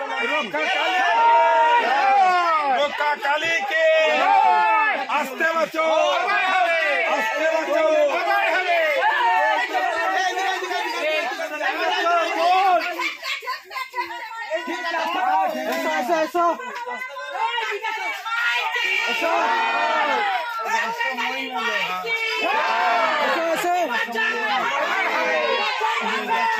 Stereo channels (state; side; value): identical; both; correlation 1.00